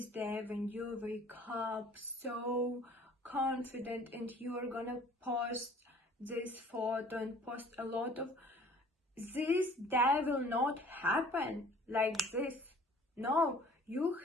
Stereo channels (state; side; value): normal; both; correlation 0.51